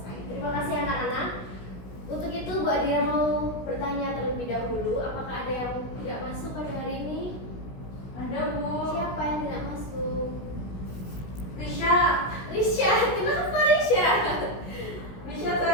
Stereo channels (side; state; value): right; late; 16 ms